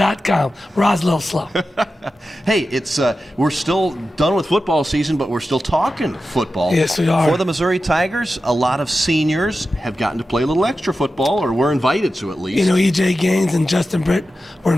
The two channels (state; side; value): normal; both; correlation 0.92